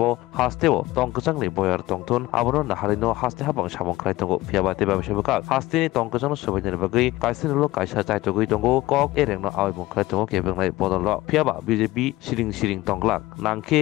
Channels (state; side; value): quieter; right; 18.3 dB